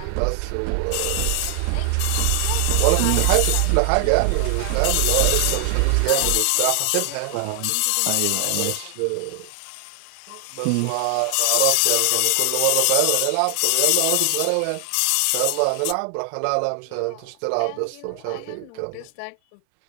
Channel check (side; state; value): both; different; correlation 0.00